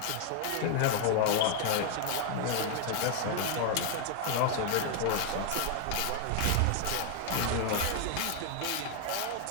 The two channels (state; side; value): different; both; correlation 0.00